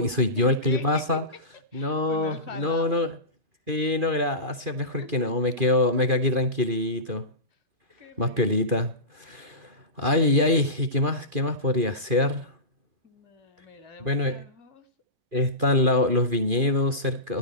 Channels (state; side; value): late; left; 2.4 ms